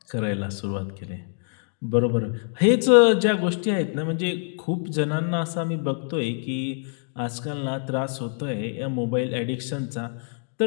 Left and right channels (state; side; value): silent; right; digital silence